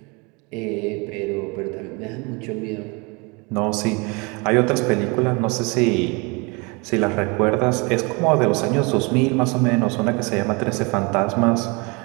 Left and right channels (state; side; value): quieter; left; 29.0 dB